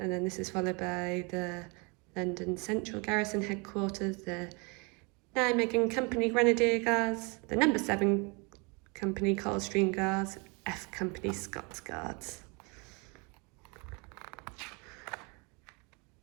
then this is followed by the London Central Garrison Headquarters, the Nijmegen Company Grenadier Guards, the No. 7 Company Coldstream Guards, F Company Scots Guards.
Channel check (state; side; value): quieter; left; 30.9 dB